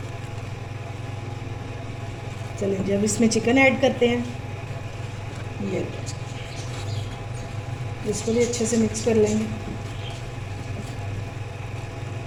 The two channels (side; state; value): both; identical; correlation 1.00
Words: चलिए जब इसमें चिकन ऐड करते हैं, ये इसको भी अच्छे से मिक्स कर लेंगे।